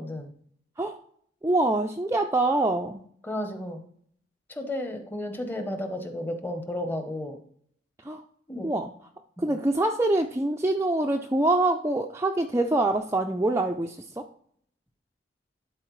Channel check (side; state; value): both; normal; correlation 0.65